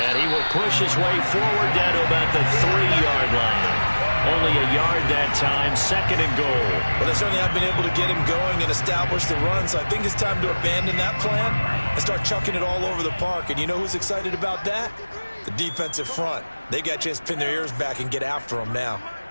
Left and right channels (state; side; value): inverted; both; correlation -1.00